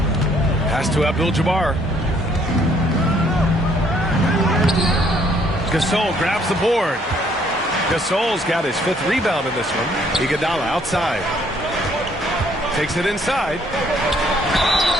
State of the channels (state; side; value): normal; both; correlation 0.65